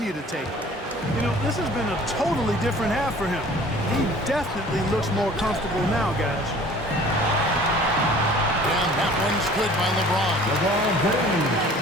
to take them. You know, this has been a totally different half for him. He definitely looks more comfortable now, guys. And that one's good by LeBron.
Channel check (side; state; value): both; normal; correlation 0.49